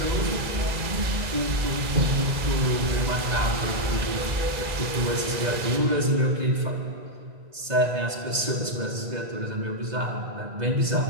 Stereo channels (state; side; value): late; left; 2.0 ms